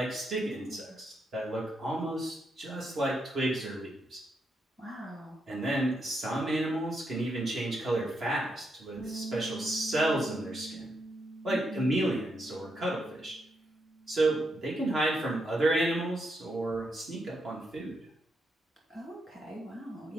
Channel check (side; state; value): both; normal; correlation 0.81